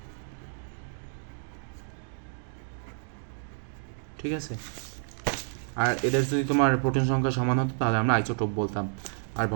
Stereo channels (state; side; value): silent; left; digital silence